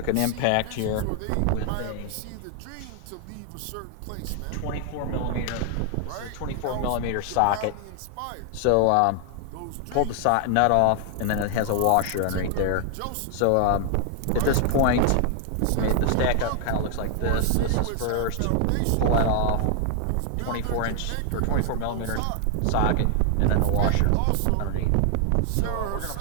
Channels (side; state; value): both; different; correlation 0.00